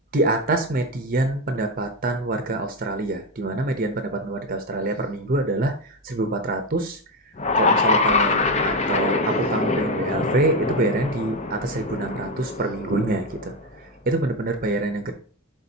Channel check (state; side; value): normal; both; correlation 0.13